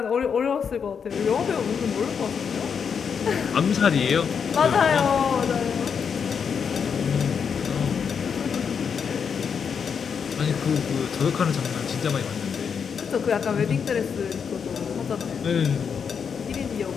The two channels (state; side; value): quieter; right; 6.7 dB